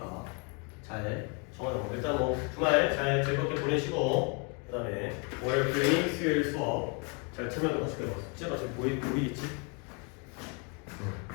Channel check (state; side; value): quieter; right; 33.4 dB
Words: 잘 정하자고. 일단 뭐 주말 잘 즐겁게 보내시고 그 다음에 월요일 클리닉 수요일 수업 잘 참여하도록 하시고요. 숙제가 지금 보이겠지?